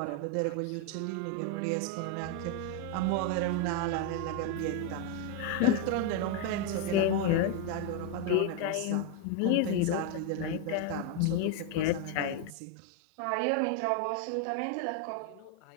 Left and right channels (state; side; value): different; both; correlation 0.01